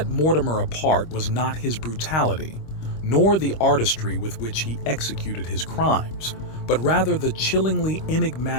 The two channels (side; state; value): right; late; 25 ms